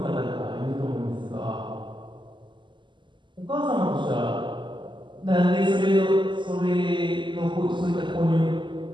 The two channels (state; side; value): late; left; 0.23 ms